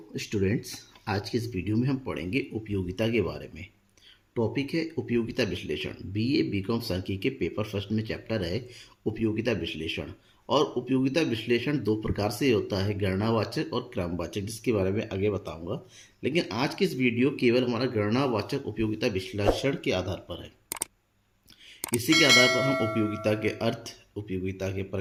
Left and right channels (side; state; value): both; identical; correlation 1.00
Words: स्टूडेंट्स, आज की इस वीडियो में हम पढ़ेंगे उपयोगिता के बारे में। टॉपिक है उपयोगिता विश्लेषण। बीए बीकॉम सांख्यिकी के पेपर फर्स्ट में चैप्टर है उपयोगिता विश्लेषण। और उपयोगिता विश्लेषण दो प्रकार से होता है, गणनावाचक और क्रमवाचक, जिसके बारे में आगे बताऊंगा। लेकिन आज की इस वीडियो केवल हमारा गणनावाचक उपयोगिता विश्लेषण के आधार पर है। इसी के आधार पर हम उपयोगिता के अर्थ, उपयोगिता के